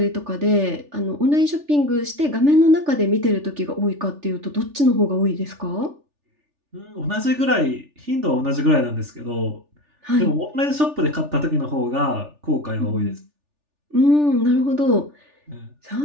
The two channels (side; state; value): left; late; 3.4 ms